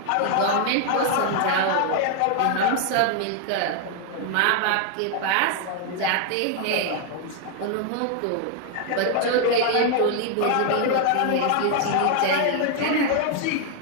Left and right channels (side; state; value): both; different; correlation 0.00